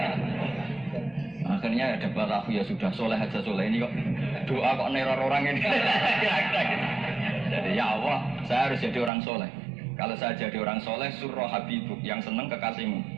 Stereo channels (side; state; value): left; drops out; at 9.1 s